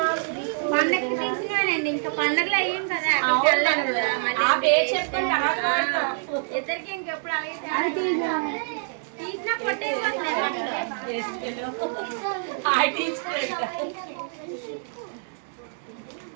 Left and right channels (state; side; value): silent; left; 61 dB below the other